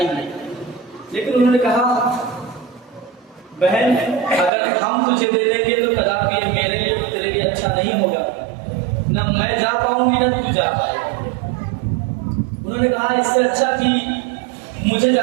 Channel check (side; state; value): left; drops out; at 4.5 s